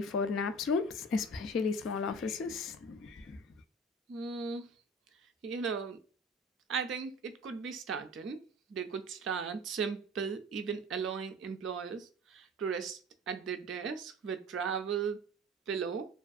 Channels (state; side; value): normal; both; correlation 0.39